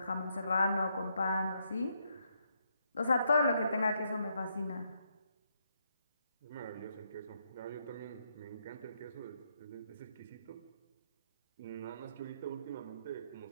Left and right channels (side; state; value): both; inverted; correlation -0.77